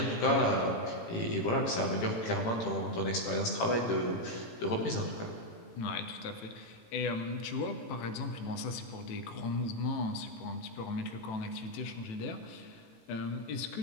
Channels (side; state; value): right; late; 18 ms